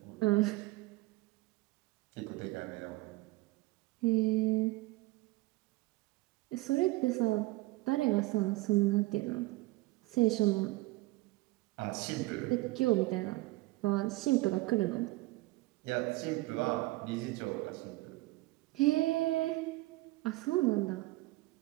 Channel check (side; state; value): left; quieter; 20.3 dB